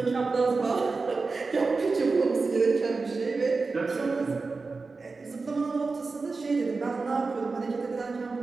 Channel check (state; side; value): quieter; left; 4.1 dB